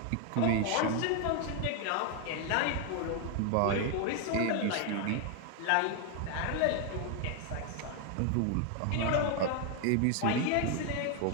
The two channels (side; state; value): both; different; correlation 0.01